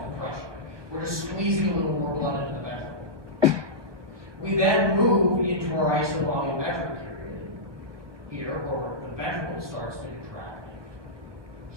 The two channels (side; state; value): left; late; 1.2 ms